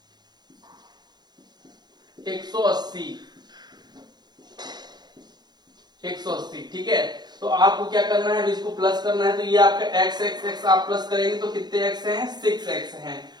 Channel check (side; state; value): left; late; 0.20 ms